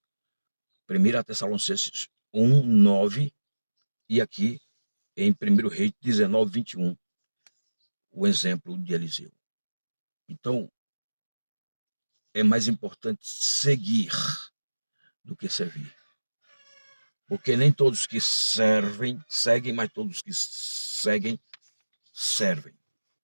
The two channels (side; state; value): both; inverted; correlation -1.00